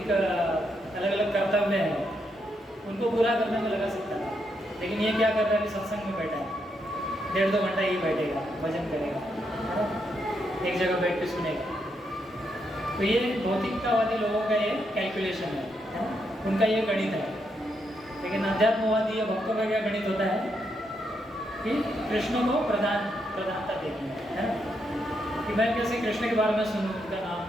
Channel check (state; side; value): normal; both; correlation 0.80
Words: अलग अलग कर्तव्य हैं उनको पूरा करने में लगा सकता था। लेकिन ये क्या कर रहा है, अभी सत्संग में बैठा है, 1.5-2 घंटा ही बैठेगा, भजन करेगा, है ना, एक जगह बैठ के सुनेगा। तो ये भौतिकतावादी लोगों का ये कैलकुलेशन है ना, उनका ये गणित है। लेकिन अध्यात्मवादी या भक्तों का क्या गणित होता है कि कृष्ण को प्रधानता देनी है ना, कि मैं कैसे कृष्ण के बारे में सुनूं, उनका नाम,